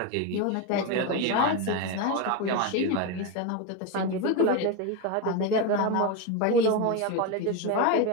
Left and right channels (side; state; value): both; different; correlation 0.03